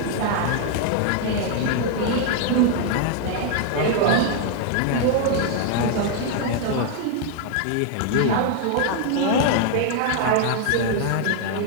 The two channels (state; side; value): different; both; correlation 0.00